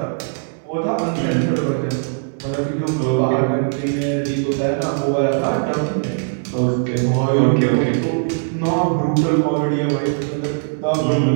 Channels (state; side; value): silent; left; digital silence